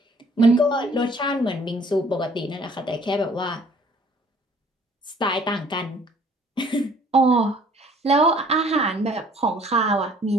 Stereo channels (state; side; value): normal; both; correlation 0.57